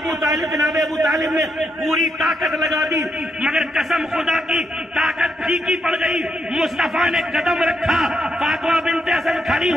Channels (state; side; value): normal; both; correlation 0.80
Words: طالب جناب ابو طالب نے پوری طاقت لگا دی مگر قسم خدا کی طاقت پھیکی پڑ گئی. مصطفیٰ نے قدم رکھا, فاطمہ بنت اسد کھڑی